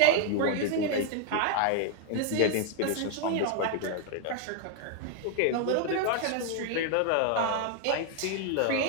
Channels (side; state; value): both; different; correlation 0.00